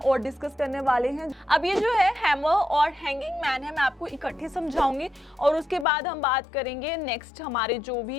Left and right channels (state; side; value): drops out; right; at 5.9 s